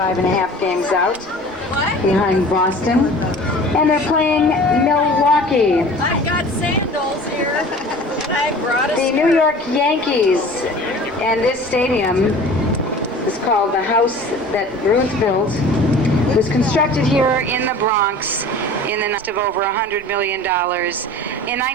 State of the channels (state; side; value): normal; both; correlation 0.42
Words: games out behind Boston. And they're playing Milwaukee. I've got sandals here. I brought a The New York Yankees. And this stadium is called the house that Ruth built. It was constructed here in the Bronx in the cost of over $100 million in